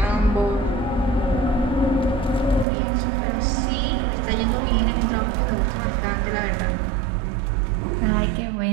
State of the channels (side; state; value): left; drops out; at 2.7 s